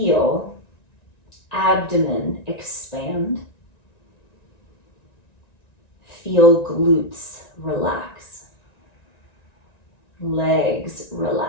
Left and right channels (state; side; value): late; right; 1.9 ms